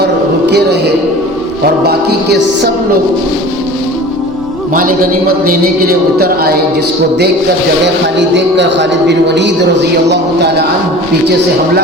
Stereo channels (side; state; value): both; normal; correlation 0.40